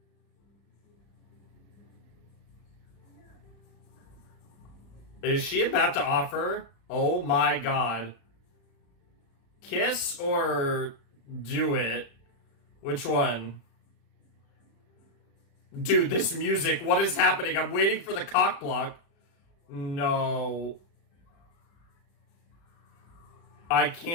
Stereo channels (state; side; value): late; right; 35 ms